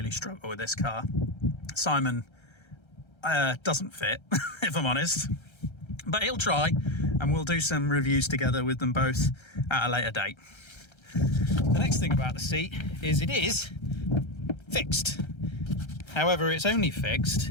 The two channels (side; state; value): right; late; 1.3 ms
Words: struggle with this car. Simon doesn't fit, if I'm honest, but he'll try, and we'll do some reviews together with them both at a later date. The next thing about the seat is it is fixed. However, it's only